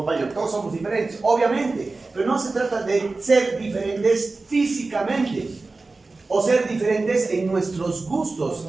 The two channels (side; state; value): left; quieter; 3.6 dB